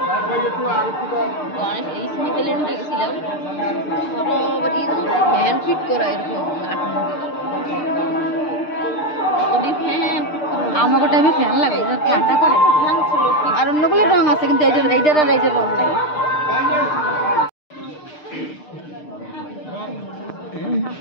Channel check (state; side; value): late; right; 6.6 ms